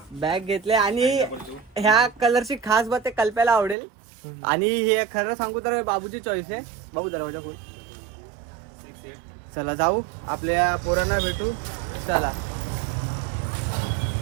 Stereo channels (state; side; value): drops out; left; at 3.8 s